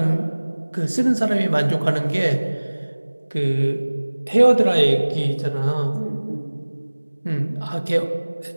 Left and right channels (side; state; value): both; inverted; correlation -1.00